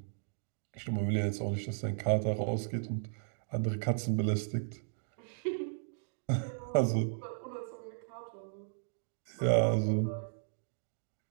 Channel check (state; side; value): silent; left; digital silence